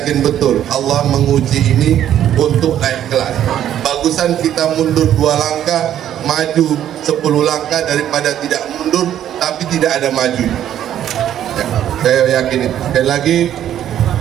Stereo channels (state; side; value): quieter; left; 10.9 dB